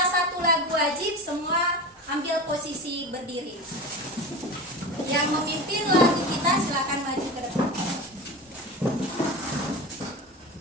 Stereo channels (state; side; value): normal; both; correlation 0.28